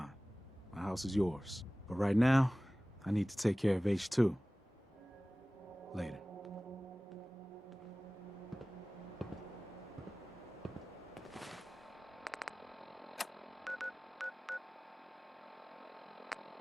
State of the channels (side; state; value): both; normal; correlation 0.98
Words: My house is yours. But right now, I need to take care of H2. Later.